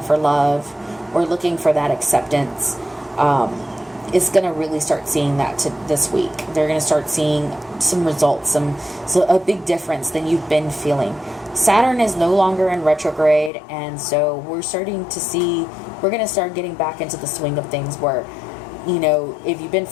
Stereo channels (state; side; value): drops out; right; at 13.5 s